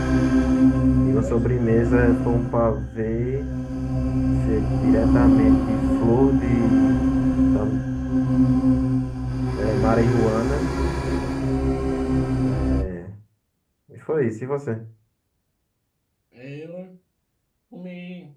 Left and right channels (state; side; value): identical; both; correlation 1.00